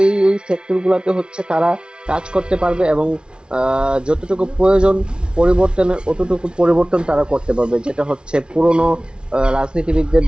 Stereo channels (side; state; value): left; late; 0.056 ms